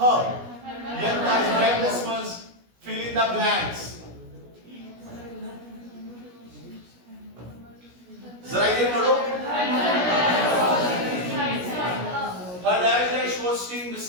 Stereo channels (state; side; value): late; left; 17 ms